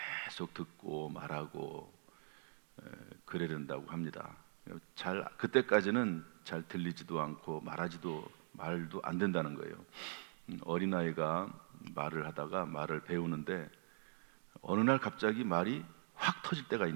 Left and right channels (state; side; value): silent; left; digital silence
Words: 계속 듣고 말하고 그래야 된다고 합니다. 그때까지는 잘 들리지도 않고 말도 안 된다는 거예요. 어린아이가 말을 하다가 말을 배우는데 어느 날 갑자기 말이 확 터질 때가